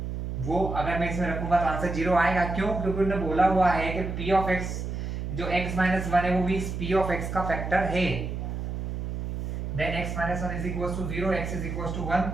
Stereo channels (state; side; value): noise; right; hum, 4 dB below the sound